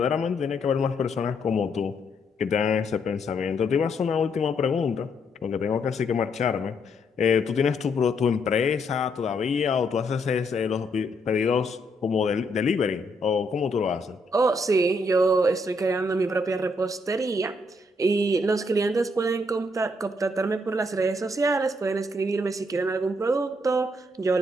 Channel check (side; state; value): both; normal; correlation 0.74